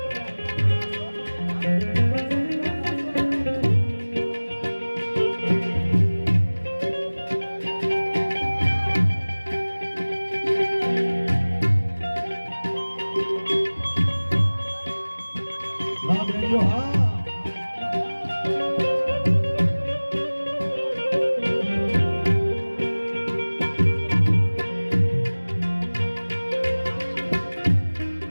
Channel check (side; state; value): both; inverted; correlation -1.00